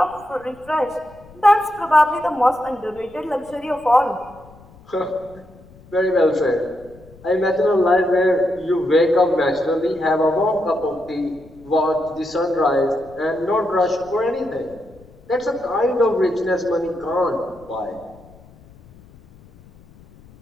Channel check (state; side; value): noise; left; rumble, 24 dB below the sound